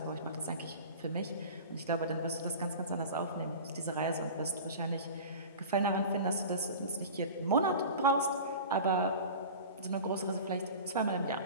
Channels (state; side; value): inverted; both; correlation -0.35